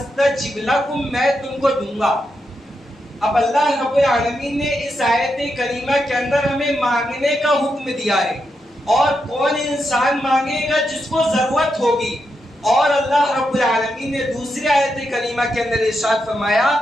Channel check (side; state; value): both; normal; correlation 0.84